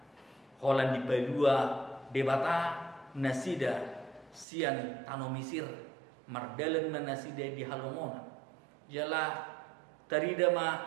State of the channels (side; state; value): left; drops out; at 4.5 s